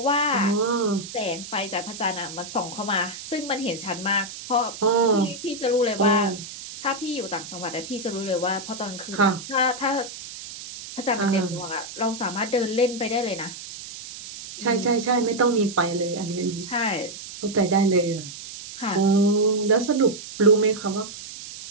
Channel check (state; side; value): noise; right; hiss, 12 dB below the sound